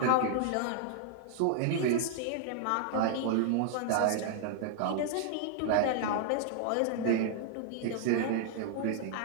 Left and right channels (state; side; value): different; both; correlation -0.01